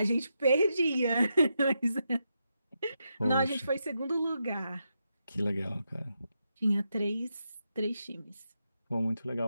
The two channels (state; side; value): inverted; both; correlation -0.84